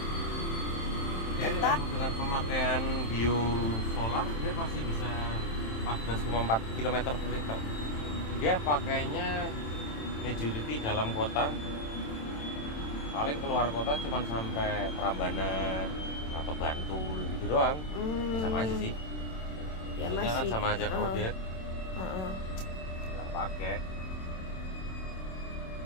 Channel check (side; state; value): right; late; 27 ms